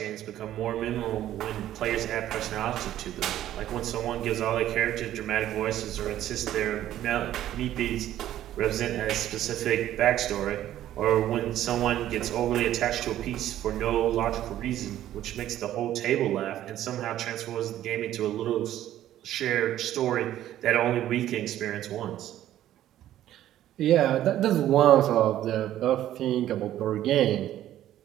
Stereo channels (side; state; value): left; quieter; 12.6 dB